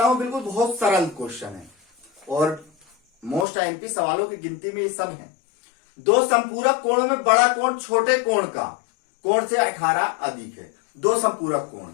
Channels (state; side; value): drops out; right; at 3.5 s